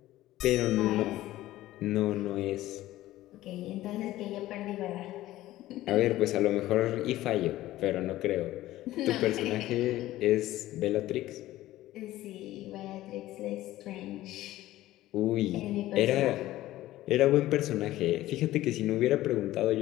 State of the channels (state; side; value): quieter; right; 15.6 dB